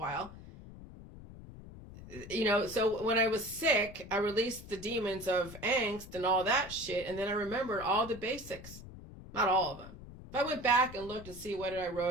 So when I was sick, I released the demons of angst and all that shit. And then I remembered all the basics. Not all of them. If I went back and looked to see what I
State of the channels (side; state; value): left; noise; rumble, 15 dB below the sound